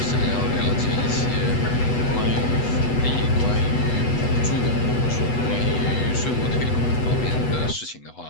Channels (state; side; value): late; right; 8.1 ms